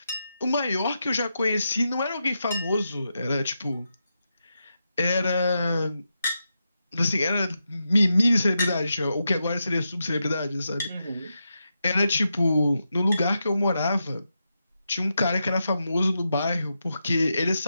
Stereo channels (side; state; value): both; inverted; correlation -0.87